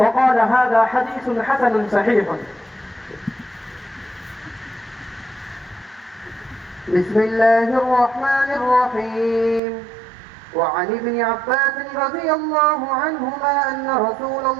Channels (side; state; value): left; drops out; at 9.6 s